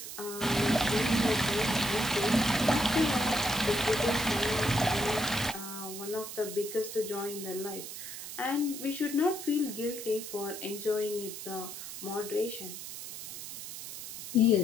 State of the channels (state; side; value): noise; right; hiss, 9 dB below the sound